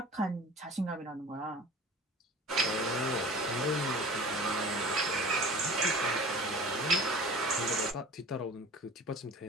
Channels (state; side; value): normal; both; correlation 0.41